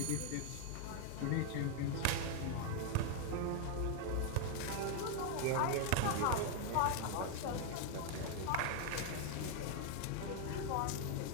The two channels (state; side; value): different; both; correlation 0.00